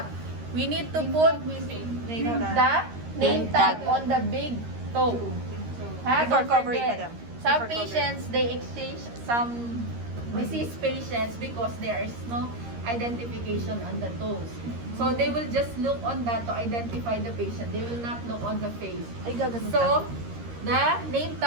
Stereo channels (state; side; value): late; left; 13 ms